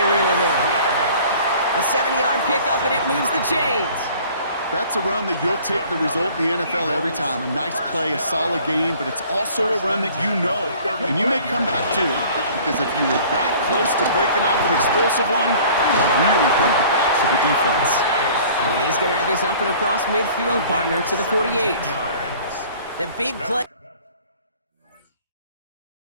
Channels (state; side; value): inverted; both; correlation -0.50